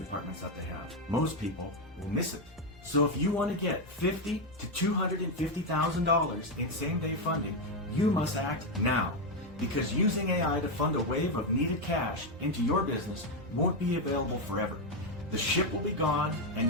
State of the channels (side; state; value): both; normal; correlation 0.05